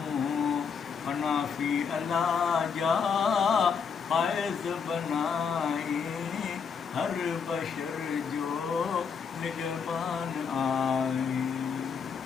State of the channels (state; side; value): quieter; right; 6.2 dB